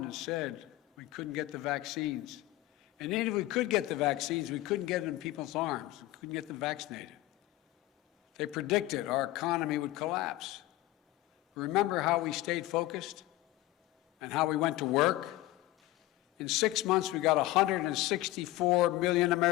said we couldn't get the vaccines. And even if we could get the vaccines, we couldn't get them in people's arms. We couldn't get them vaccinated. They predicted our economy would collapse. Remember how we stayed focused and how we went to work? In 6 months, we got 164 million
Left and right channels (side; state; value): right; quieter; 17.1 dB